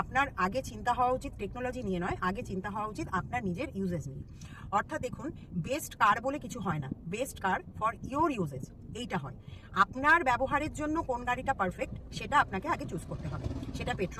আপনার আগে চিন্তা হওয়া উচিত টেকনোলজি নিয়ে নয়, আগে চিন্তা হওয়া উচিত আপনার নিজের ইউজেজ নিয়ে। অর্থাৎ দেখুন, বেস্ট কার বলে কিছু হয় না, best car for your uses এইটা হয়। আপনার ব্যবহারের জন্য কোন গাড়িটা পারফেক্ট সেটা আপনাকে আগে চুজ করতে হবে। সেটা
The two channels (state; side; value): identical; both; correlation 1.00